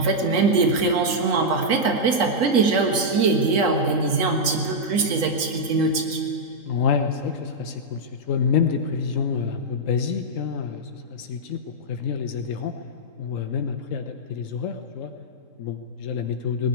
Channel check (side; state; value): right; late; 3.8 ms